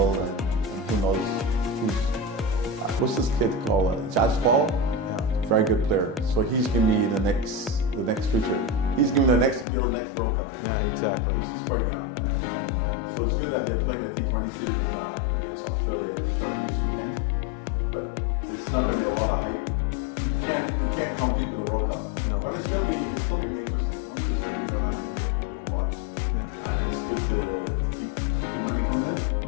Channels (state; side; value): drops out; right; at 9.7 s